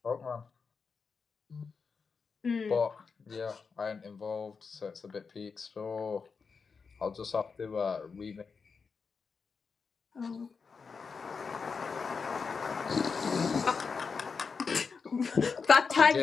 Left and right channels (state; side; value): quieter; right; 5.2 dB